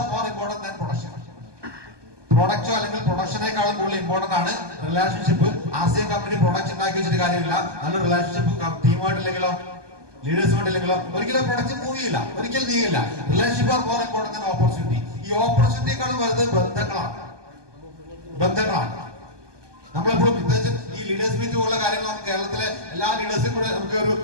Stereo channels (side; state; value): left; late; 1.2 ms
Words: more important than production. പ്രൊഡക്റ്റോ അല്ലെങ്കിൽ പ്രൊഡക്ഷനേക്കാളും കൂടുതൽ ഇമ്പോർട്ടന്റ് ആണ് റിലേഷൻഷിപ്പ്. ആർസിഎം കമ്പനി പ്രൊഡക്റ്റ് ഉണ്ടാക്കി വെച്ചിട്ട് കാര്യമില്ല. നല്ലൊരു റിലേഷൻഷിപ്പ് ടീമായിട്ടില്ലെങ്കിലോ ലീഡേഴ്സുമായിട്ടില്ലെങ്കിലോ ഒരിക്കലും പ്രൊഡക്റ്റ് മൂവ് ചെയ്യില്ല, ഒരിക്കലും നീങ്ങില്ല. Relationship are more important than opportunity. ഈ ഓപ്പർച്യൂണിറ്റിയേക്കാളും വലുത് ബന്ധങ്ങളാണ്. നമ്മളെപ്പോഴും പ്രത്യേകിച്ച് ഈ ലീഡേഴ്സ് മീറ്റ് പോലുള്ള കാര്യങ്ങൾ നമുക്ക് കേരളത്തിലെ എല്ലാ ലീഡേഴ്സും കൂടെ നമുക്ക്